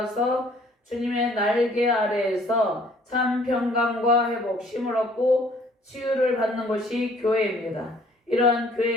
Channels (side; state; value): both; normal; correlation 0.58